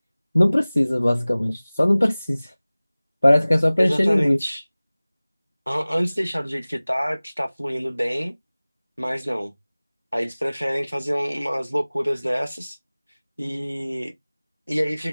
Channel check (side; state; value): both; inverted; correlation -0.99